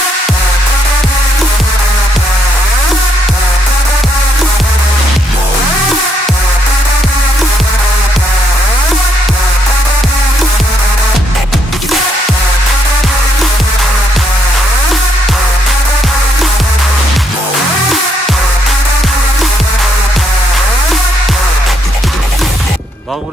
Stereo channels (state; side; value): normal; both; correlation 0.74